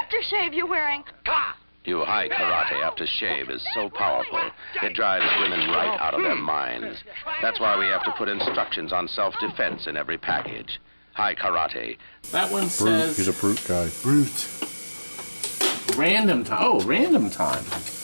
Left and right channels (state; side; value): inverted; both; correlation -1.00